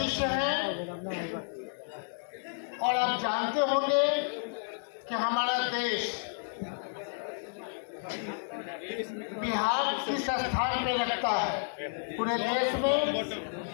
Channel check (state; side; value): silent; right; digital silence